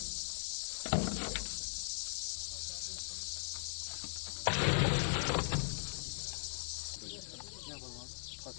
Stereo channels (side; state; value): right; silent; 52 dB below the other